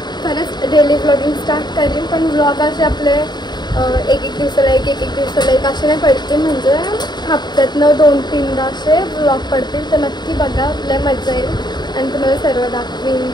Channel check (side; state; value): right; late; 0.21 ms